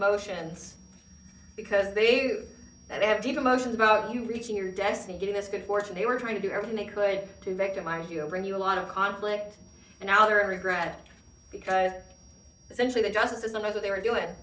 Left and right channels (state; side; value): identical; both; correlation 1.00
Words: because they have deep emotions about you reaching your destiny, getting this good fortune. They were trying to do everything they could to victimize you, bring you a lot of conflict, and now they're in regret because essentially the justice system knows what they were doing.